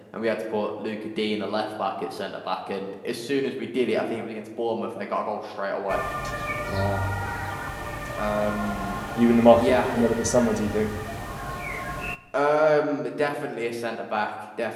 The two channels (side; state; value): both; identical; correlation 1.00